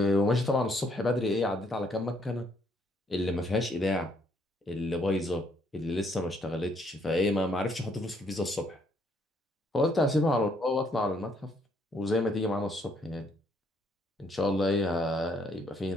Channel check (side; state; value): both; normal; correlation 0.69